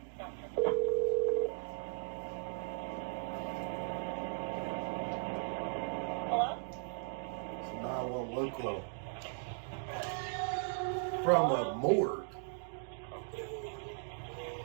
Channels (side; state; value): left; silent; digital silence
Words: Hello? It's a 911 call. From a morgue.